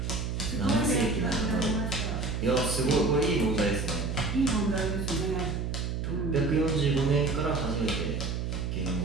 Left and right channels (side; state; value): right; noise; hum, 2 dB below the sound